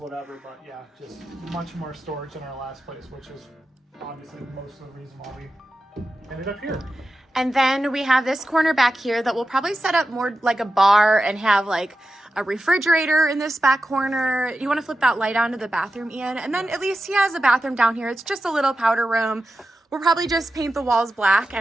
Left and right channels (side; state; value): both; normal; correlation 0.91